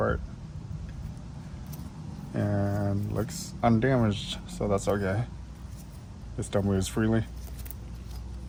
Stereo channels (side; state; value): both; identical; correlation 1.00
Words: And looks undamaged, so that's okay. It still moves freely.